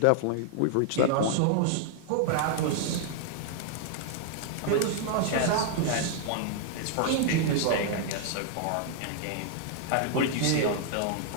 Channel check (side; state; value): both; different; correlation -0.01